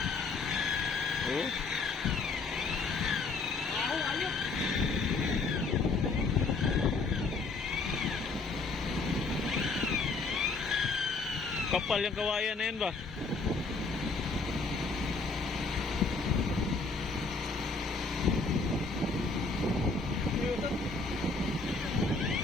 Oh. Ayok. Kapal yung kawayan na yun ba?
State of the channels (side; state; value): right; quieter; 4.1 dB